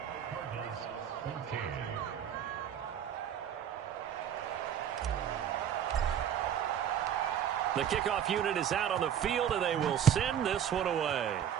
The kickoff unit is out on the field, and they will send this one away.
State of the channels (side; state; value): left; quieter; 9.4 dB